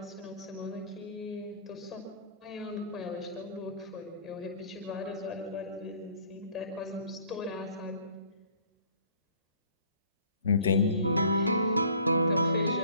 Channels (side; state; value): both; inverted; correlation -0.52